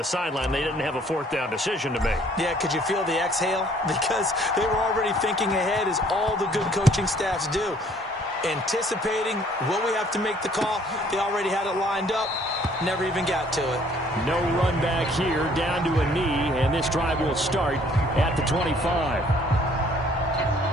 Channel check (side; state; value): both; normal; correlation 0.60